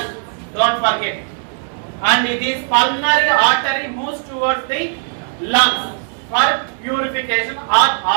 Don't forget. And this pulmonary artery moves towards the lungs for purification or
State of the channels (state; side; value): silent; left; digital silence